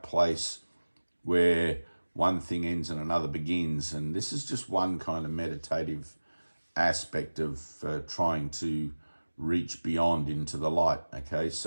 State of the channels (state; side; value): inverted; both; correlation -1.00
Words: place where one thing ends and another begins. And this is just one kind of meditative aspect of trying to reach beyond into the light. Okay,